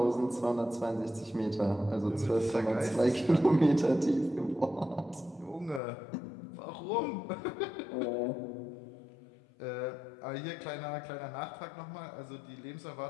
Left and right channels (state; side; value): drops out; right; at 5.8 s